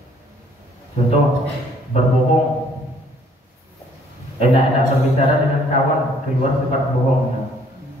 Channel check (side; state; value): both; normal; correlation 0.61